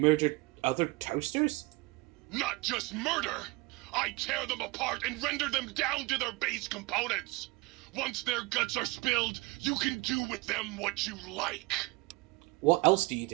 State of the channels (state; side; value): quieter; left; 24.4 dB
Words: other toasters? Not just murder! I tear them apart and render them down to their base components! Once their guts are spilled, you can do with them what you like. What else do you